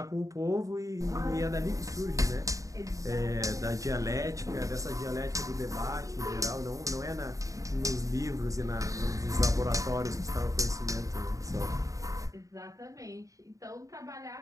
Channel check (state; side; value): late; left; 0.16 ms